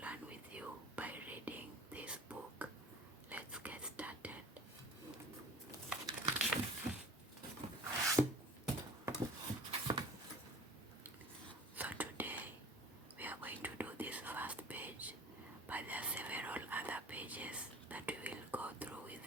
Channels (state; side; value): normal; both; correlation 0.44